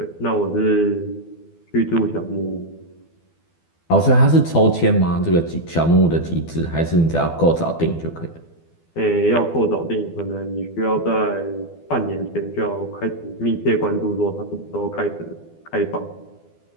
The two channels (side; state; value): right; late; 12 ms